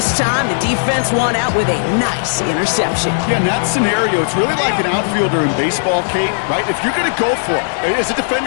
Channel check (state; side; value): silent; right; digital silence